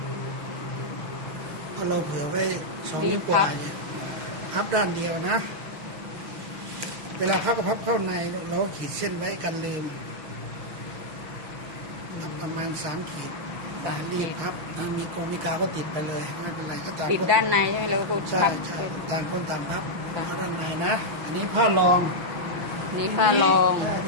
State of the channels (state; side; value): late; left; 6.5 ms